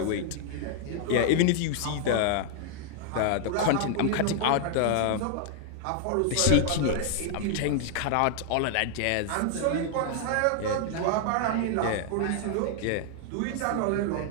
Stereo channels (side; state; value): both; different; correlation 0.00